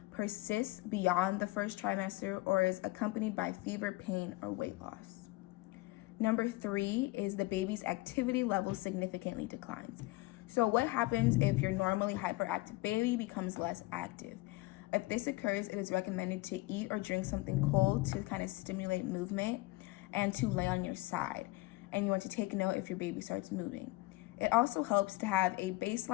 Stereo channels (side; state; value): right; quieter; 20.5 dB